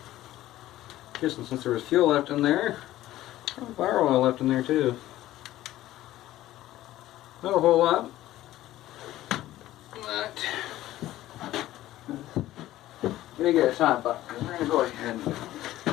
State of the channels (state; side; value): quieter; right; 14.8 dB